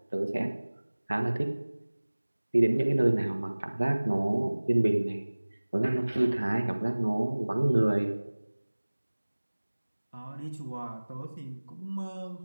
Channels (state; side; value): inverted; both; correlation -1.00